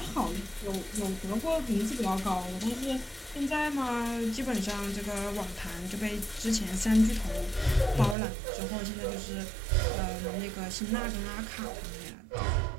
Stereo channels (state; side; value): drops out; left; at 8.2 s